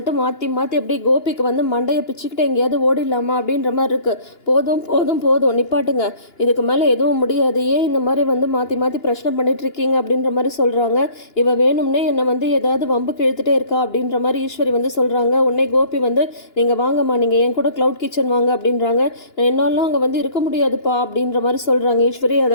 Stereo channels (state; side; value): late; right; 2.9 ms